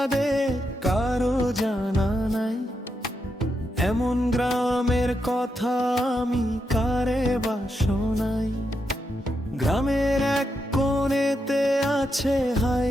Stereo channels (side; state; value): both; normal; correlation 0.84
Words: কারো জানা নাই, এমন গ্রামের কথা আমি কারে বা শোনাই। গ্রামের এক কোণেতে আছে